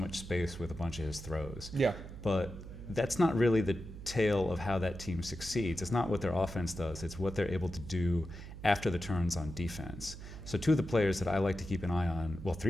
space with a bunch of his throws. Yeah. But that's not really the tale of how that team succeeds. It's not what their offense does. It's what they're able to do after the turns on defense. So 2 of the players that I like to keep an eye on, well,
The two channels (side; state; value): right; noise; hum, 12 dB below the sound